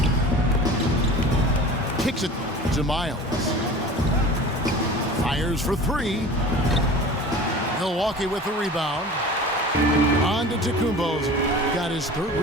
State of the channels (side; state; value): both; normal; correlation 0.39